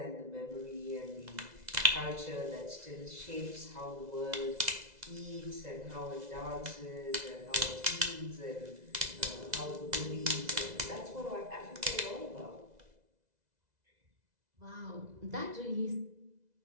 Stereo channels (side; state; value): left; late; 2.0 ms